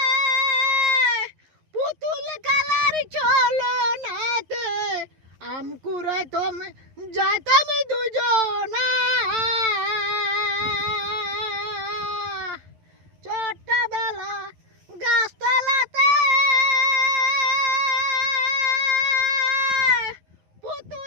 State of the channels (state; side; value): late; left; 11 ms